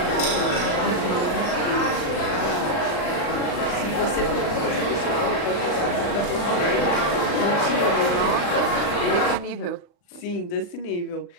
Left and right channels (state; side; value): late; right; 40 ms